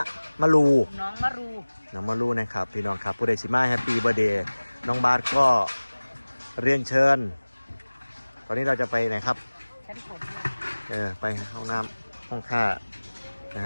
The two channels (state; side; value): inverted; both; correlation -1.00